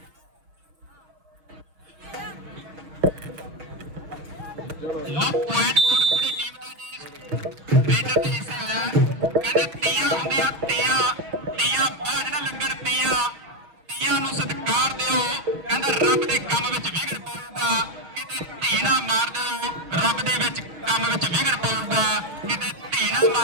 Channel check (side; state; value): left; late; 6.1 ms